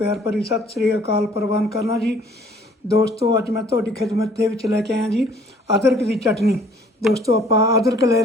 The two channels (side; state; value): both; normal; correlation 0.57